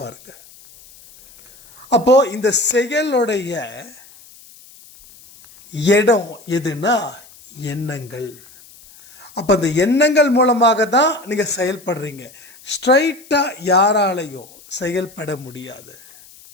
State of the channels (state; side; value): noise; left; hiss, 23 dB below the sound